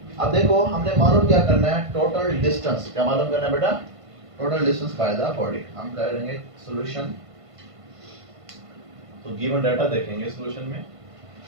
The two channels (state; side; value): late; left; 1.5 ms